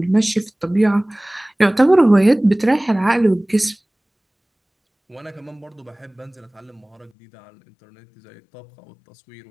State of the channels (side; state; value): right; drops out; at 7.1 s